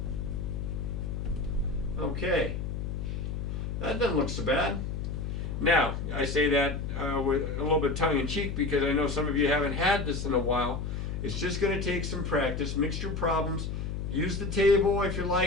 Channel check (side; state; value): left; noise; hum, 3 dB below the sound